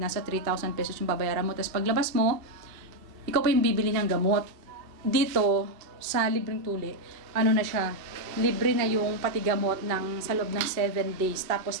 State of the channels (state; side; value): late; left; 2.6 ms